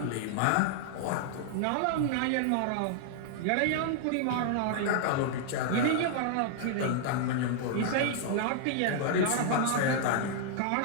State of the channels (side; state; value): both; different; correlation -0.01